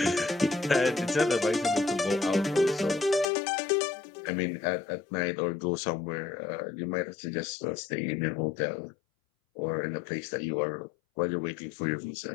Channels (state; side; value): drops out; right; at 3.2 s